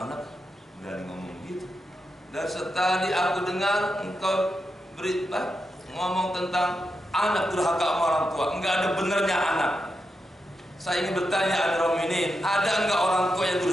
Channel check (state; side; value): normal; both; correlation 0.87